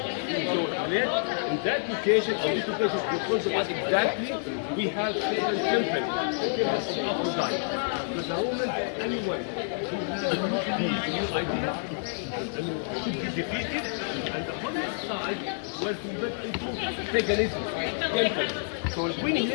in that location, on this location, in front of us exactly, we have Satan's temple, the temple of Aphrodite. But the Romans, anyone who has a new idea, should be defeated, and the other side was converted into paganism, temple. So when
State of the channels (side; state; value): right; silent; 57 dB below the other